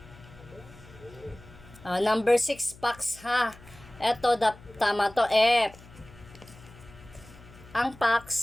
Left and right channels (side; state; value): left; noise; hum, 21 dB below the sound